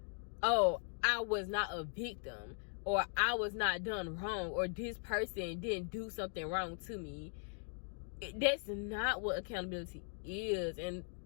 oh, I was not a victim, or I was not done wrong, or this person didn't do something wrong to me. That's not what accountability is. And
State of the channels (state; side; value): silent; right; 52 dB below the other